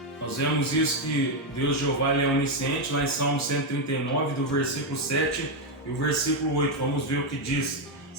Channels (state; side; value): normal; both; correlation 0.05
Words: Nós vemos isso, que Deus Jeová, ele é onisciente, lá em Salmo 139, do versículo 7 e o versículo 8. Vamos ver o que diz.